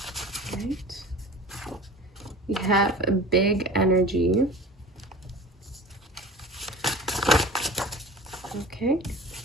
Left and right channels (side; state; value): both; normal; correlation 0.39